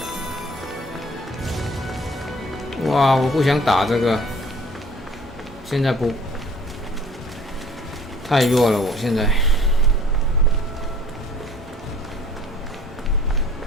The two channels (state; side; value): normal; both; correlation 0.52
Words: 哇，我不想打这个，现在不太弱了，我现在。